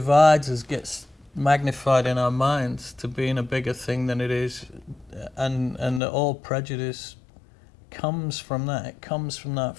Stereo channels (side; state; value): right; drops out; at 6.0 s